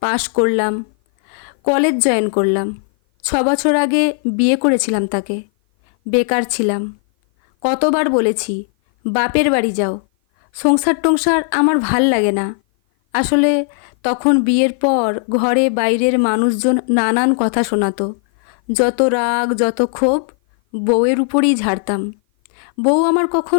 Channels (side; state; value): right; silent; 56 dB below the other